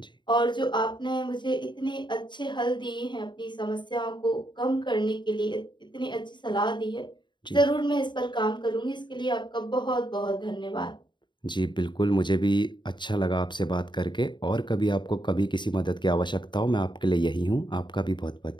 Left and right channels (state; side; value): late; right; 0.22 ms